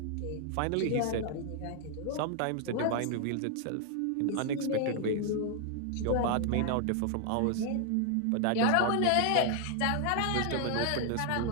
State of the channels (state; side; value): different; both; correlation 0.00